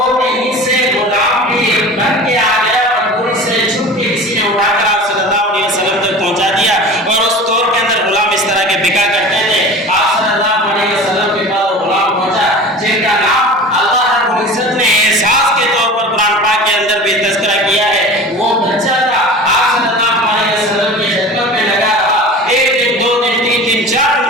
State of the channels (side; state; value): both; normal; correlation 0.36